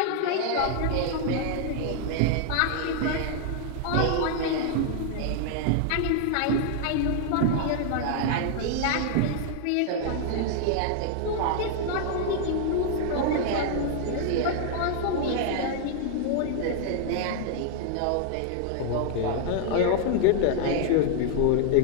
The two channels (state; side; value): different; both; correlation 0.00